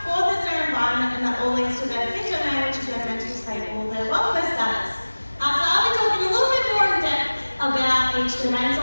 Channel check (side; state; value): both; inverted; correlation -1.00